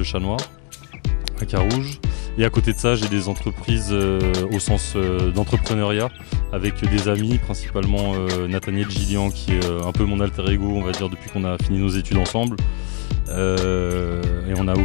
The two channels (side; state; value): right; quieter; 39.4 dB